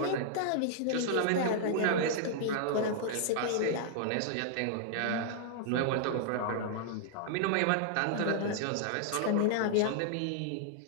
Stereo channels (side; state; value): both; different; correlation -0.01